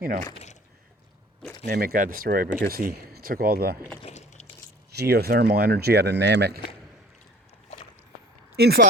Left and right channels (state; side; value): normal; both; correlation 0.47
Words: Namek got destroyed because he took all the geothermal energy out of Namek in